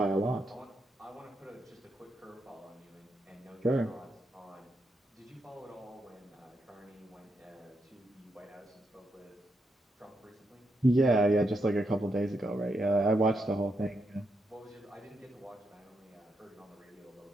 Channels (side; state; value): both; normal; correlation 0.82